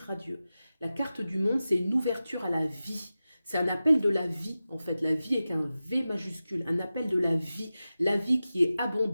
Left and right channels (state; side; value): inverted; both; correlation -0.94